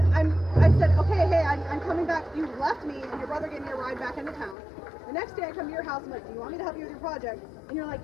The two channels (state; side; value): drops out; right; at 4.5 s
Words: I said, okay, hey, I'm coming back. You left me, and your brother gave me a ride back into town. The next day I come to your house, I'm like, do you want me to help you with your project? And you're like,